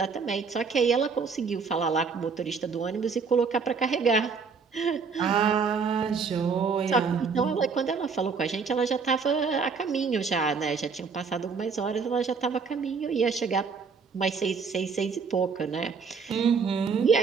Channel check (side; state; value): left; quieter; 5.3 dB